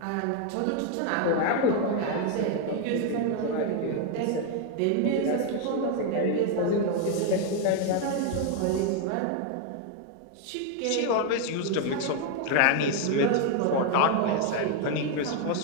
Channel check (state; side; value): different; both; correlation 0.01